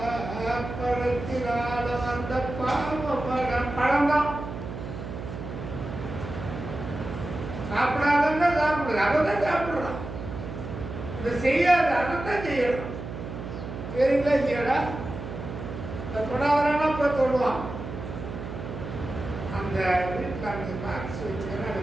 பழத்தினால வந்த பாவமடா. பழம்தான் சாப்பிடாதன்னா சாப்பிடுறது. அவதான் சாப்பிடுறான். இதை செய்யாத அதைத்தான் செய்யணும். சரிங்களா இல்லையாடா? தொடாதானா போய் தொடுவான். அந்த வீட்டில் அந்த பாக்ஸ் வச்சுக்கிறேன். அதை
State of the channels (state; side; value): noise; right; hum, 8 dB below the sound